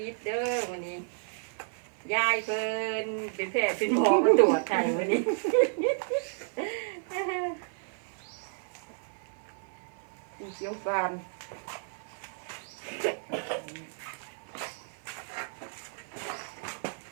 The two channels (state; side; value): silent; left; 57 dB below the other